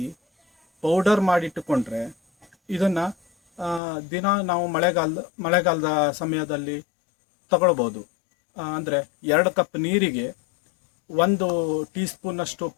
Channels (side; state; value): right; drops out; at 3.8 s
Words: ಪೌಡರ್ ಮಾಡಿಟ್ಟುಕೊಂಡ್ರೆ ಇದನ್ನು ದಿನ ನಾವು ಮಳೆಗಾಲದ ಸಮಯದಲ್ಲಿ ತಗೊಳ್ಬೋದು. ಅಂದರೆ 2 ಕಪ್ ನೀರಿಗೆ 1 ಟೀ ಸ್ಪೂನಷ್ಟು